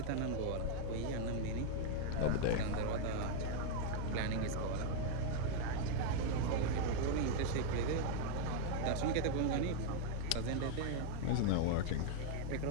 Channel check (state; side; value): different; both; correlation 0.00